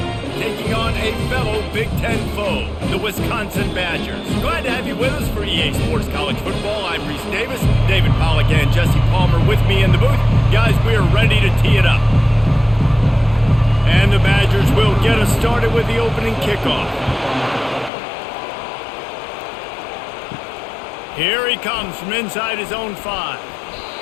taking on a fellow Big Ten foe, the Wisconsin Badgers. Glad to have you with us for EA Sports College Football. I'm Reese Davis, David Pollack and Jesse Palmer with me in the booth. Guys, we are ready to tee it up. And the Badgers will get us started with the opening kickoff. Here he comes from inside his own 5.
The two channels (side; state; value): right; drops out; at 17.9 s